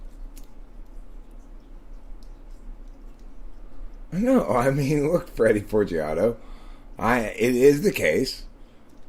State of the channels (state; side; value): identical; both; correlation 1.00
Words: No, I mean, look, Freddie Forgiato. It is the case,